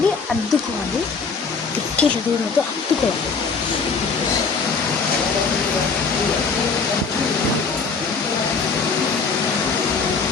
అద్దుకోవాలి. ఎక్కి దూరంతో అద్దుకోవాలి.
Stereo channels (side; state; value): right; quieter; 5.0 dB